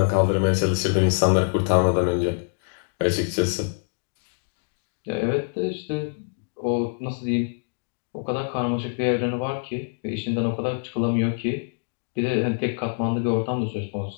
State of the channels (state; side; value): silent; right; digital silence